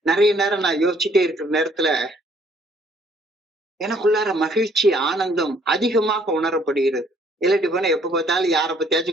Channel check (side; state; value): both; normal; correlation 0.63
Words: நிறைய நேரம் நான் யோசிச்சுட்டே இருக்கிற நேரத்துல எனக்குள்ளார மகிழ்ச்சி, ஆனந்தம் அதிகமாக உணரப்படுகிறது. இல்லாட்டி போனா எப்ப பார்த்தாலும் யாரை